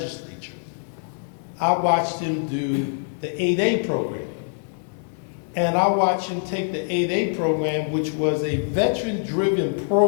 I watched him do the 8A program. And I watched him take the 8A program, which was a veteran-driven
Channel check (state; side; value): silent; right; digital silence